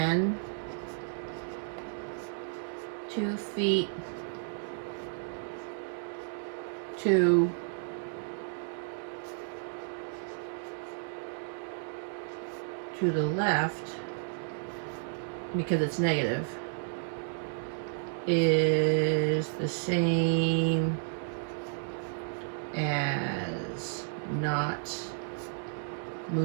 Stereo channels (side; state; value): left; silent; digital silence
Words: 2 feet to the left, because it's negative, is the same as not